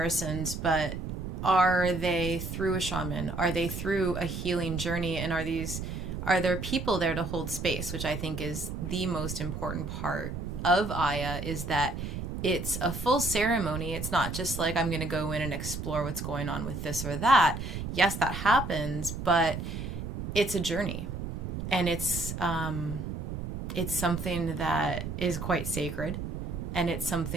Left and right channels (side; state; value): right; noise; rumble, 5 dB below the sound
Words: but are they through a shaman? Are they through a healing journey? And are there people there to hold space, which I think is the most important part of Aya, is that it's a full ceremony. It's not just like, I'm going to go in and explore what's going on with this or that. Yes, that happens, but it's a journey. And it's something that is quite sacred. And it's